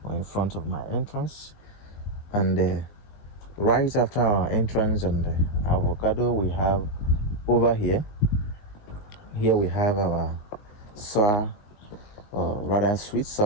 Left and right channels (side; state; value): right; late; 19 ms